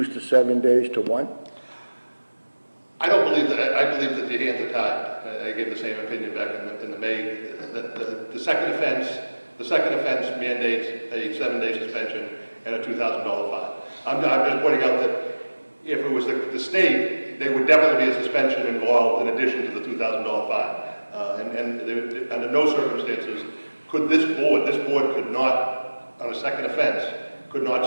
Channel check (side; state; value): both; inverted; correlation -1.00